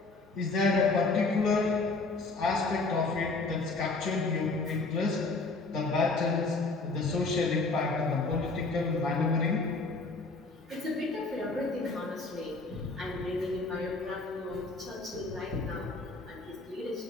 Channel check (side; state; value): right; quieter; 3.6 dB